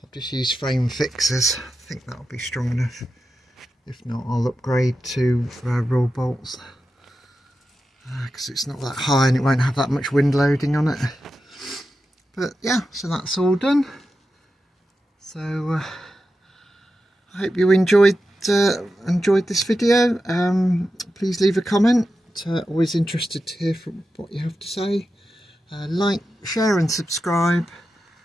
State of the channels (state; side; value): normal; both; correlation 0.91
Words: I've just used frame fixers. I think that'll be strong enough. If not, I'll upgrade to raw bolts because it's not that high and it won't have that much wind loading on it. But yeah, so that's all done. So I hope you enjoyed this video. Please leave a comment. Always interested to hear from what you have to say. Like, share and subscribe,